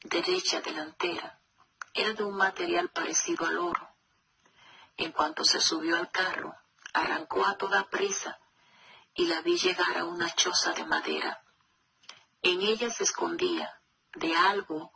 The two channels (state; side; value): identical; both; correlation 1.00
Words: derecha delantera era de un material parecido al oro. En cuanto se subió al carro, arrancó a toda prisa y la vi llegar a una choza de madera. En ella se escondía de algo